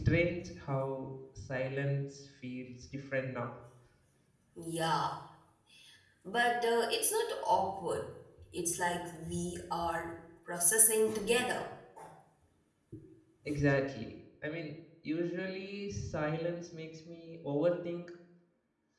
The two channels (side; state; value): both; identical; correlation 1.00